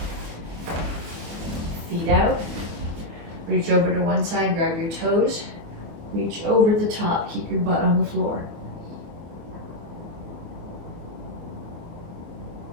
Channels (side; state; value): left; late; 24 ms